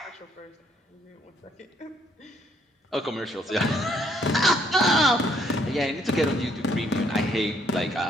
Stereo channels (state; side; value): normal; both; correlation 0.68